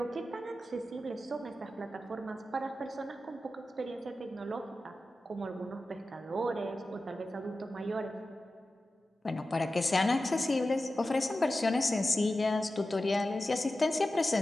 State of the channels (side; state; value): both; normal; correlation 0.93